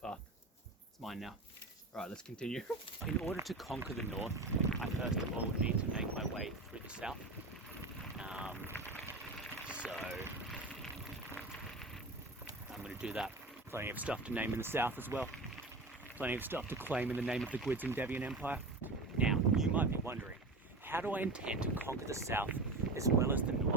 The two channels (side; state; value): left; quieter; 3.0 dB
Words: it's mine now. All right, let's continue. In order to conquer the north, I first of all need to make my way through the south. So I'm going to do that. Plenty of stuff to name in the south as well. Plenty of stuff to claim in the name of the GwydsEndeavours Empire. Now, you might be wondering, how do I intend to conquer the south as well as the